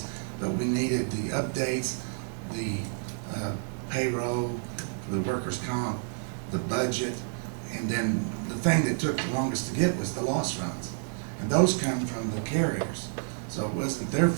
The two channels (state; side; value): silent; left; digital silence